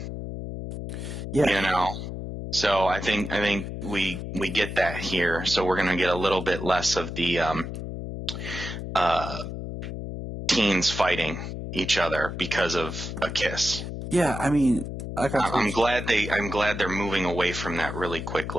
Yeah. So I think we get that here. So we're gonna get a little bit less of the teens fighting each other because of a kiss. Yeah, I'm glad they're moving away from that really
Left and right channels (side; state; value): left; noise; hum, 7 dB below the sound